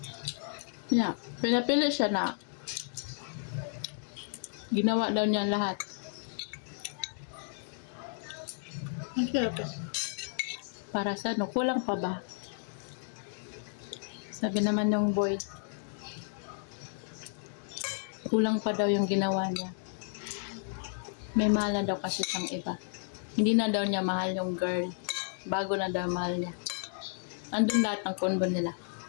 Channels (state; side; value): silent; right; digital silence